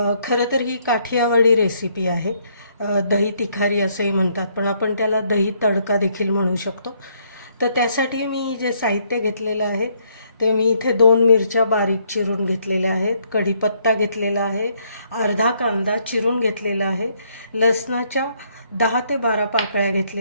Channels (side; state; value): both; inverted; correlation -0.70